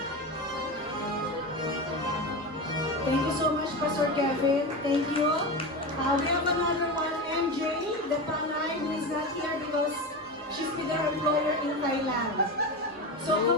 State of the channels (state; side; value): normal; both; correlation 0.22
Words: Thank you so much, Pastor Kevin. Thank you. We have another one, MJ, the Panay, who is not here because she's with her employer in Thailand. So